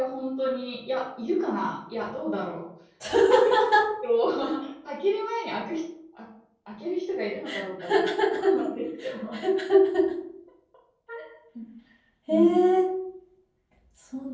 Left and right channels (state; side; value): identical; both; correlation 1.00